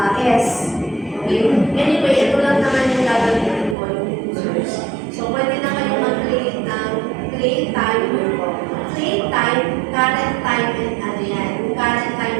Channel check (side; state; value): left; drops out; at 3.8 s